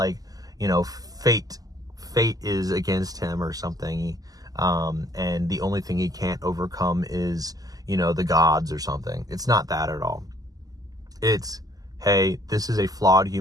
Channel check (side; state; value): left; late; 0.17 ms